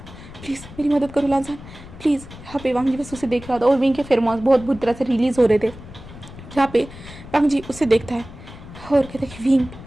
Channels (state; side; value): noise; left; rumble, 16 dB below the sound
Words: please मेरी मदद करो लांजान प्लीज़। यहाँ पे वांग जी बस उसे देख रहा था और विंग के फेरोमोन्स बहुत बुरी तरह से रिलीज़ हो रहे थे। जहाँ पे वांग जी उसे देखता है और कहता है कि विंग,